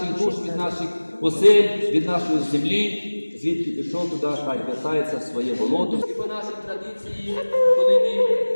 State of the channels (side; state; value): both; inverted; correlation -1.00